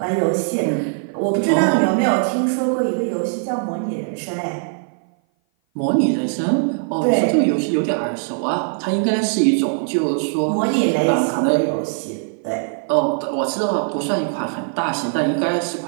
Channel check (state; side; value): silent; left; 57 dB below the other